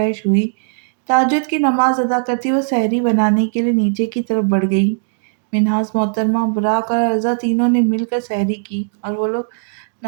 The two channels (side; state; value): left; silent; digital silence